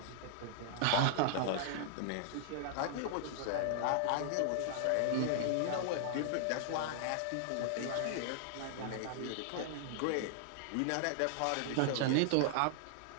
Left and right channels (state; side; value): different; both; correlation 0.00